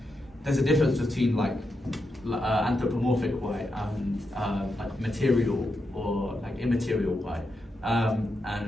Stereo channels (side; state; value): both; normal; correlation 0.85